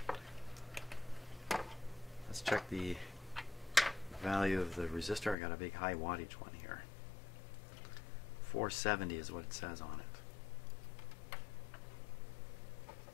Let's check the value of the resistor. I got a big high wattage one here. 470 is what it says on it.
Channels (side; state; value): right; drops out; at 5.4 s